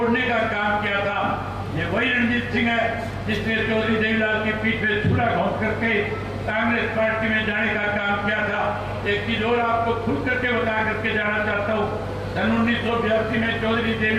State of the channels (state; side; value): identical; both; correlation 1.00